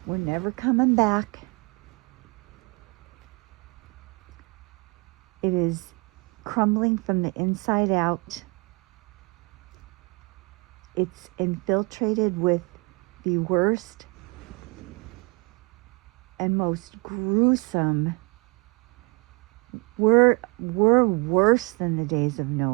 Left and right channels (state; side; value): quieter; left; 29.3 dB